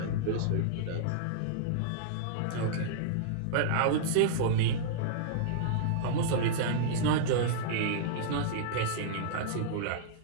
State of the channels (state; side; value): different; both; correlation -0.02